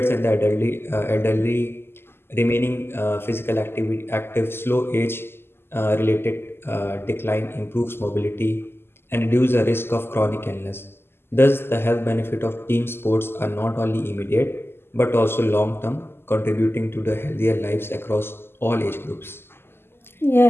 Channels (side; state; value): right; late; 0.11 ms